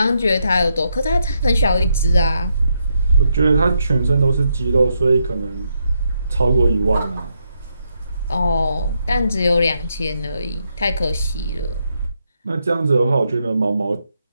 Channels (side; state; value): both; inverted; correlation -0.79